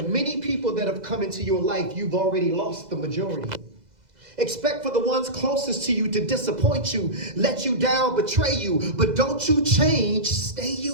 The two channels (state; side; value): late; left; 2.0 ms